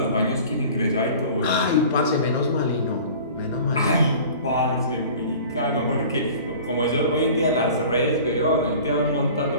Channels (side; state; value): both; inverted; correlation -0.43